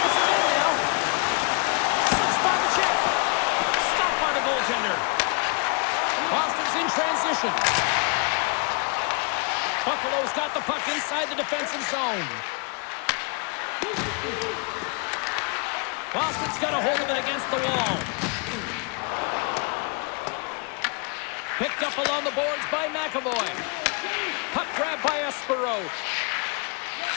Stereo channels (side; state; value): right; quieter; 34.6 dB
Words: end now. Slips by the check. Stopped by the goaltender. Boston's in transition. Buffalo's got the puck inside the defensive zone. Boston's got a hold of it against the wall. Picked up along the boards by McAvoy. Puck grab by Espero.